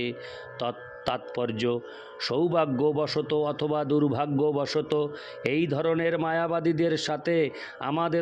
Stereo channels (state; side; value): identical; both; correlation 1.00